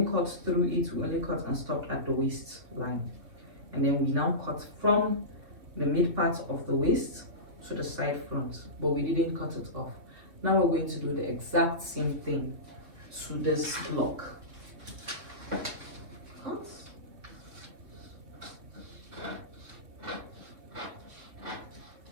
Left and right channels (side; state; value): left; late; 3.1 ms